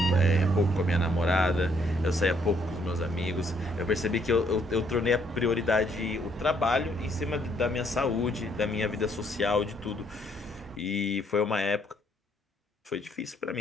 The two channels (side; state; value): both; normal; correlation 0.68